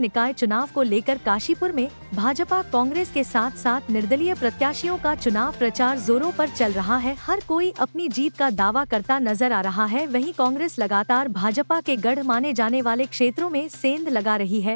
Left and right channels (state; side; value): inverted; both; correlation -1.00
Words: चुनाव को लेकर काशीपुर में भाजपा कांग्रेस के साथ साथ निर्दलीय प्रत्याशियों का चुनाव प्रचार जोरों पर चल रहा है। हर कोई अपनी जीत का दावा करता नजर आ रहा है। वहीं कांग्रेस लगातार भाजपा के गढ़ माने जाने वाले क्षेत्रों में सेंध लगा रही